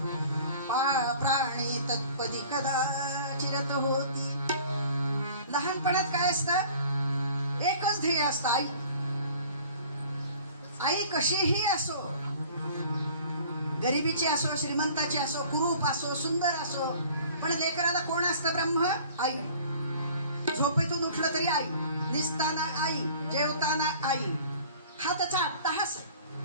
प्राणी तत्पदी कदाचिरत होती. लहानपणात काय असतं? एकच ध्येय असतं, आई. आई कशीही असो, गरिबीची असो, श्रीमंताची असो, कुरूप असो, सुंदर असो, पण लेकराला कोण असतं? ब्रह्म, आई. झोपेतून उठलं तरी आई, निसताना आई, जेवताना आई. हा त्याचा अट्टहास आहे.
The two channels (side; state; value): both; inverted; correlation -0.48